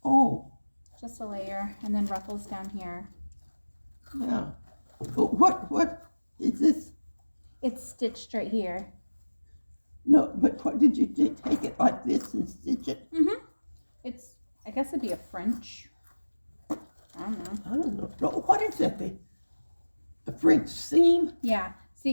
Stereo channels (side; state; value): both; inverted; correlation -1.00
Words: Oh. Just a layer and then ruffles down here. Yeah. But what is this? It's stitched right here. No, but what did you do? Take it like this and stitch it? Mm-hmm. I guess it'd be a French. I don't know. No, what is that? The French seam? Yeah. See,